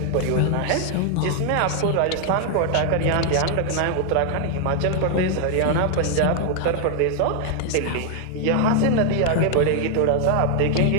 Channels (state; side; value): different; both; correlation 0.00